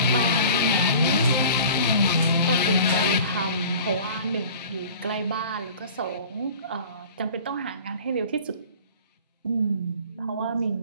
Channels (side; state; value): both; inverted; correlation -0.43